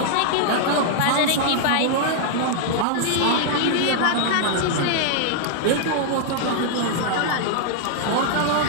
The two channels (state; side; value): different; both; correlation -0.01